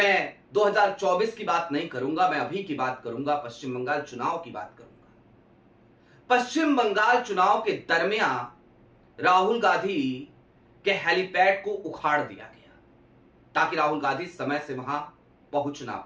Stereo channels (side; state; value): both; identical; correlation 1.00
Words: 2024 की बात नहीं करूंगा, मैं अभी की बात करूंगा, पश्चिम बंगाल चुनाव की बात करूंगा। पश्चिम बंगाल चुनाव के दरमियान राहुल गांधी के हेलीपैड को उखाड़ दिया गया ताकि राहुल गांधी समय से वहां पहुंच ना